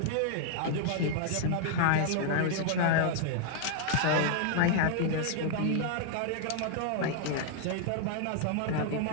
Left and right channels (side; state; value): both; different; correlation 0.00